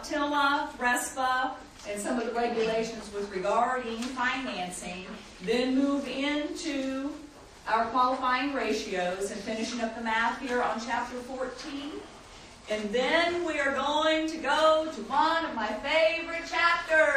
TILA, RESPA, and some of the regulations with regarding financing, then move into our qualifying ratios and finishing up the math here on chapter 14. And then we are going to go to one of my favorite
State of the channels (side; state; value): both; identical; correlation 1.00